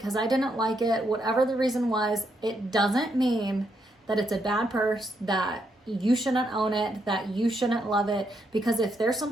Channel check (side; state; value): both; normal; correlation 0.78